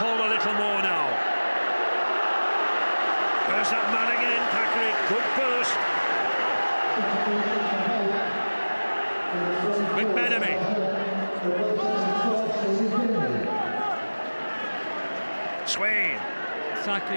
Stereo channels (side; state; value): both; inverted; correlation -1.00